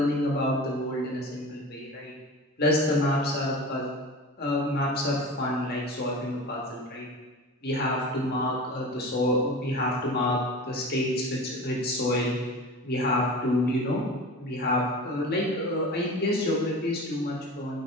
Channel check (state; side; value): normal; both; correlation 0.34